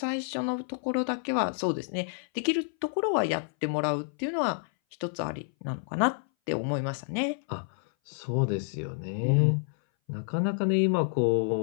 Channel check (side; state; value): right; silent; 58 dB below the other